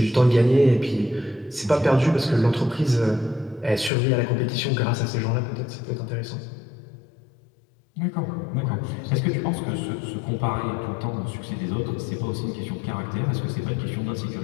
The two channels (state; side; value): drops out; right; at 3.9 s